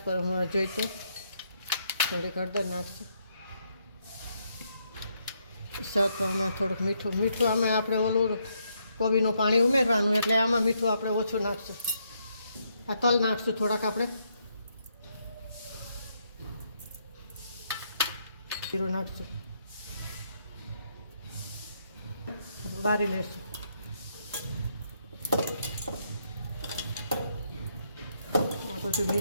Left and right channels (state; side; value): inverted; both; correlation -0.76